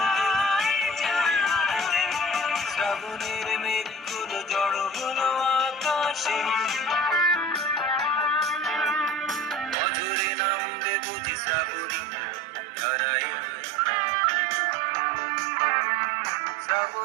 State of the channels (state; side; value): drops out; left; at 9.8 s